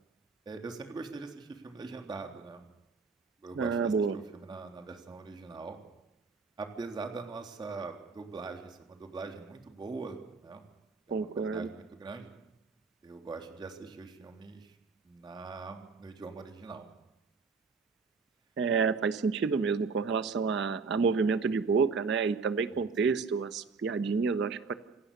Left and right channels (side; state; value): left; quieter; 4.8 dB